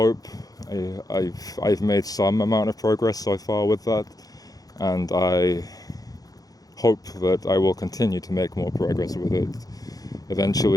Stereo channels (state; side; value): late; right; 0.18 ms